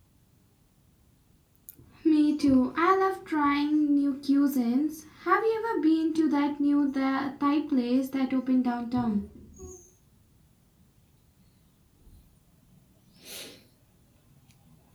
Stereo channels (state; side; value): identical; both; correlation 1.00